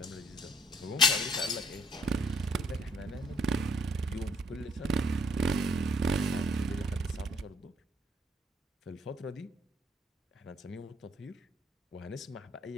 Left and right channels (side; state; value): both; normal; correlation 0.66